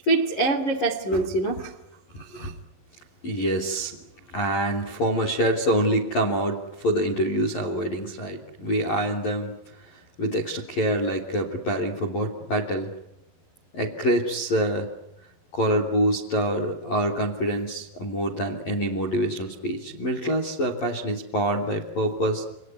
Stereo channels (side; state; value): right; late; 11 ms